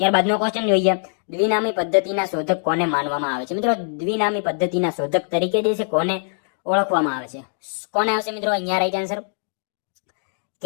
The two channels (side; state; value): right; silent; digital silence